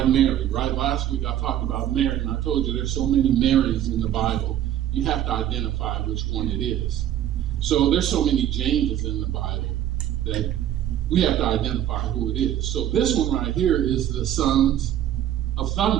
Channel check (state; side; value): quieter; left; 11.5 dB